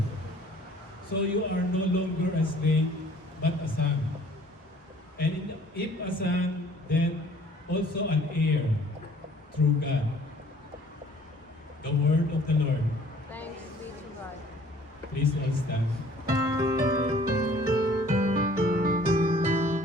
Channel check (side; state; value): both; normal; correlation 0.55